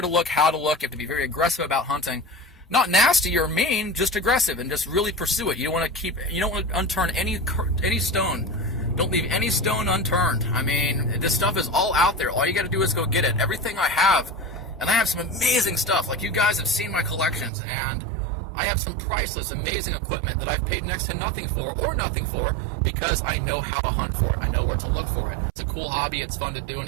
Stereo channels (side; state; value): left; drops out; at 17.5 s